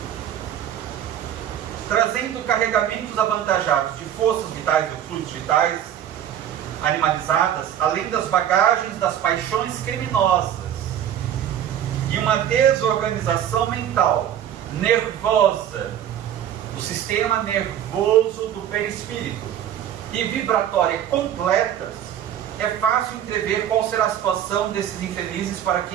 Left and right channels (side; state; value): left; quieter; 10.3 dB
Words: trazendo carregamentos avantajados de forças vitais e fluidos vitais animalizadas, além das bagagens das paixões criminosas e uma desorganização mental, nervosa, do sistema nervoso do perispírito e vibratória completas, é fácil entrever qual será a situação desses infelizes para